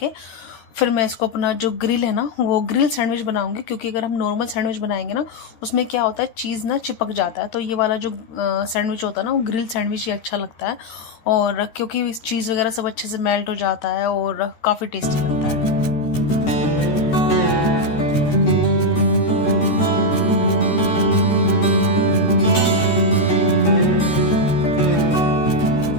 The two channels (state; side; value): late; right; 13 ms